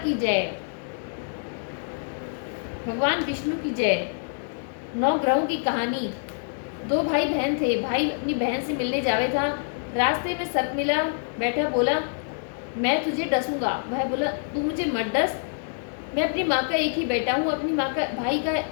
जय, भगवान विष्णु की जय। 9 ग्रहों की कहानी। 2 भाई बहन थे। भाई अपनी बहन से मिलने जावे था। रास्ते में सर्प मिला, बैठा बोला मैं तुझे डसूंगा। वह बोला तू मुझे मत डस, मैं अपनी माँ का एक ही बेटा हूँ, अपनी माँ का भाई का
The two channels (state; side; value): silent; right; digital silence